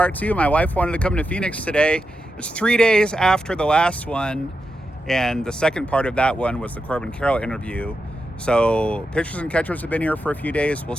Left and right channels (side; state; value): both; normal; correlation 0.87